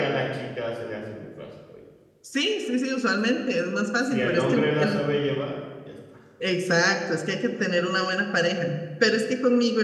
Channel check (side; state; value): both; identical; correlation 1.00